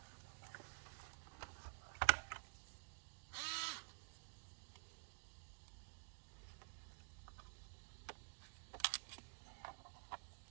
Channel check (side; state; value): left; silent; digital silence